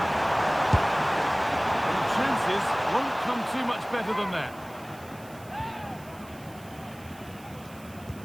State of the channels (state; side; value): noise; right; hiss, 22 dB below the sound